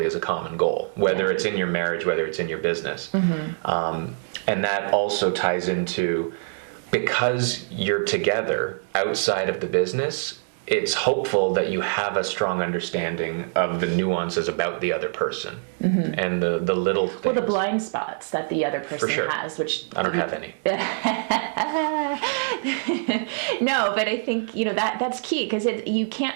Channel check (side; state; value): left; silent; 62 dB below the other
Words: is a common goal, whether it's in your marriage, whether it's in your business? And that also ties into, because you're together outside of the business, it's hopeful that you have a strong understanding of the nuances about the other person and the little things. Well, the blind spots that the other person sure. has, which I don't have any. No, but I think that's key, because you